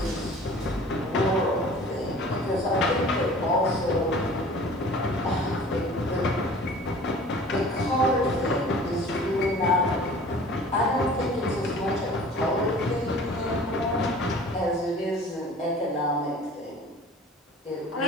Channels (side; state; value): both; normal; correlation 0.45